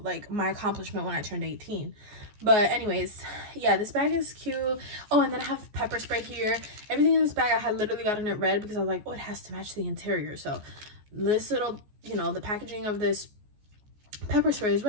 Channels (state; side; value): late; left; 14 ms